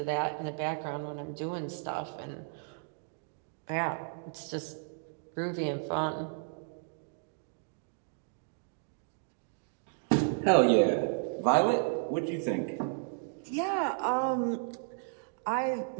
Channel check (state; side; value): silent; left; digital silence